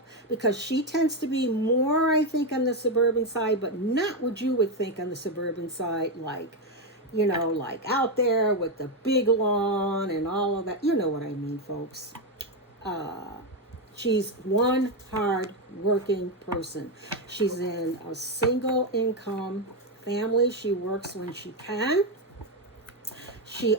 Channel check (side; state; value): both; normal; correlation 0.07